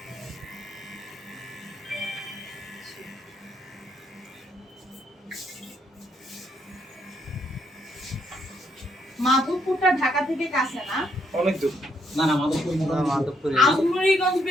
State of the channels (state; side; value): normal; both; correlation 0.74